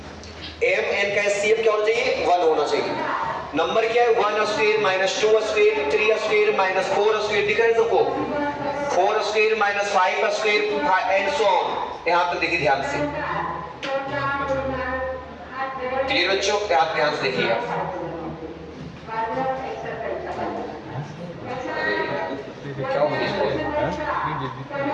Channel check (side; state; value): both; identical; correlation 1.00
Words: M N का एचसीएफ क्या होना चाहिए, 1 होना चाहिए। नंबर क्या है, 1 square minus 2 square, 3 square minus 4 square, दिख रहा है सबको, 4 square minus 5 square and so on. यहां तक देखिए ध्यान से, क्लियर बच्चों, आप ध्यान से देखिए। क्या हो गया,